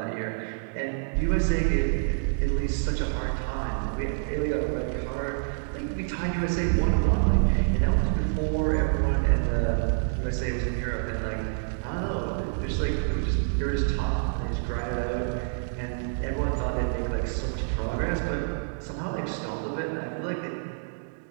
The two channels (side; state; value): left; silent; digital silence